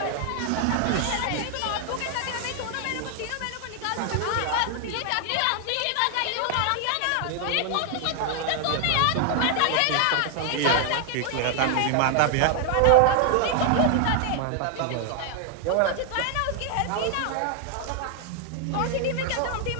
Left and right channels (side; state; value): both; different; correlation 0.00